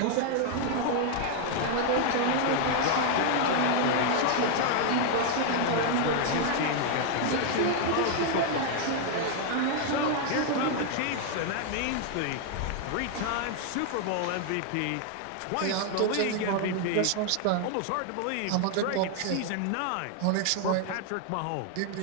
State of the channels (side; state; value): both; different; correlation 0.00